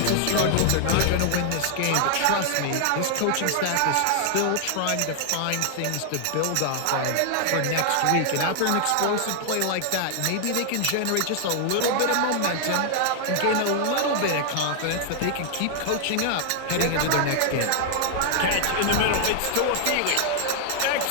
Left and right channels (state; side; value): different; both; correlation 0.00